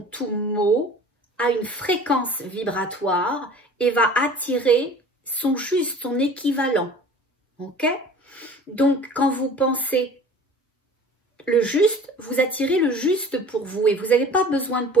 tout mot a une fréquence vibratoire et va attirer son juste, son équivalent. Ok? Donc, quand vous pensez le juste, vous attirez le juste pour vous et vous n'avez pas besoin de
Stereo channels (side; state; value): both; normal; correlation 0.44